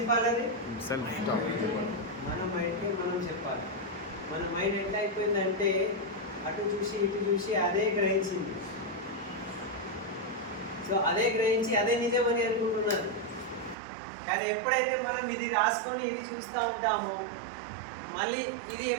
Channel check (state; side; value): drops out; left; at 13.8 s